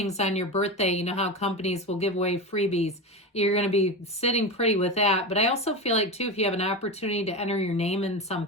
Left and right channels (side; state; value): both; normal; correlation 0.21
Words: on your birthday, you know how companies will give away freebies, you're going to be sitting pretty with that. But I also feel like too, if you have an opportunity to enter your name in